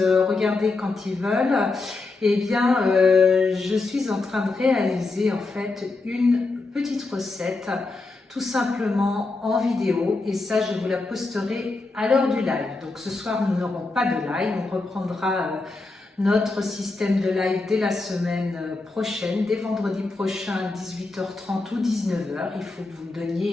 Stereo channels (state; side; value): quieter; right; 3.5 dB